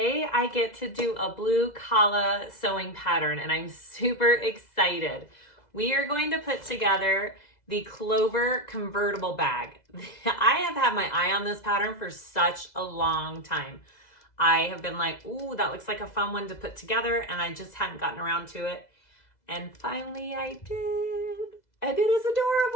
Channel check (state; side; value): late; right; 2.0 ms